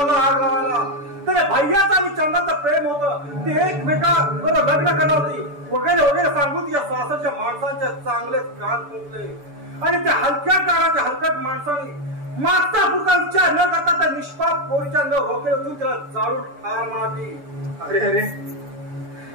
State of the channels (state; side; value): late; left; 6.9 ms